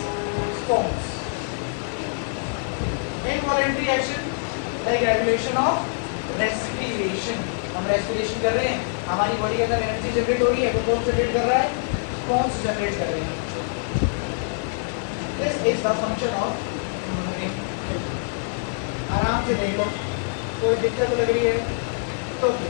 spawns. Involuntary action like regulation of respiration. हम रेस्पिरेशन कर रहे हैं, हमारी बॉडी के अंदर एनर्जी जनरेट हो रही है, तो कौन जनरेट कर रहा है? स्पॉन्स जनरेट कर रहे हैं। This is the function of human brain. आराम से देख लो, कोई दिक्कत लग रही है तो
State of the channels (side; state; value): right; silent; digital silence